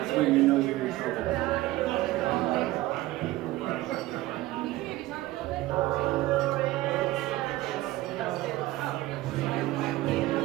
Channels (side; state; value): left; quieter; 17.3 dB